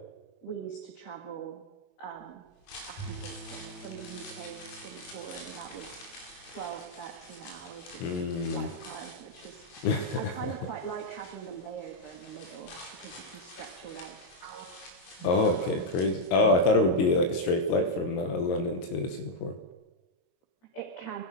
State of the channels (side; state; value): right; late; 22 ms